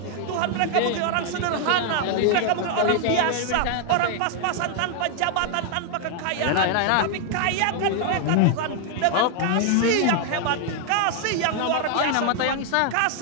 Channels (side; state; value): both; different; correlation 0.00